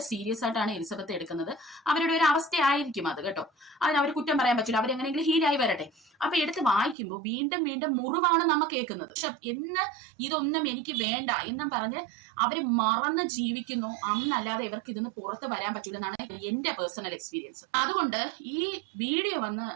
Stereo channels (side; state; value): left; drops out; at 7.0 s